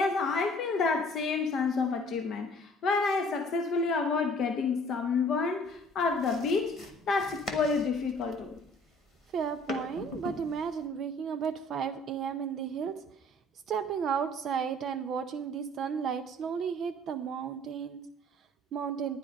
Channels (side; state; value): both; normal; correlation 0.54